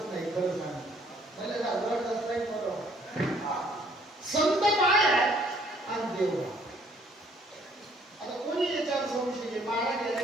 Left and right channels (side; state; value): both; normal; correlation 0.62